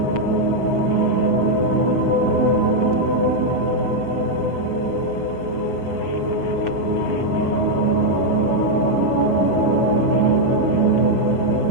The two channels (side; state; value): right; late; 6.8 ms